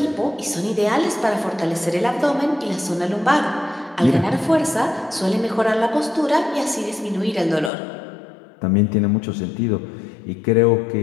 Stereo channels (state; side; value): drops out; right; at 7.7 s